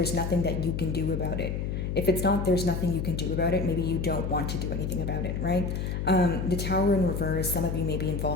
nothing that you can do about it. If it's not there's nothing you can do about it, maybe you don't want to do anything about it, right? The Tower in reverse, some of you may be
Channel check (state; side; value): noise; left; hum, 2 dB below the sound